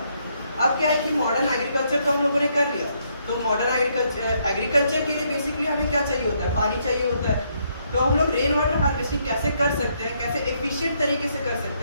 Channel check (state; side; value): inverted; both; correlation -0.73